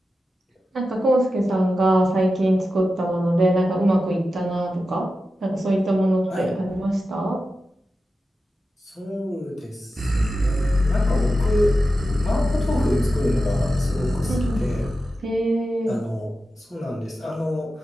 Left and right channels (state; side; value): normal; both; correlation 0.92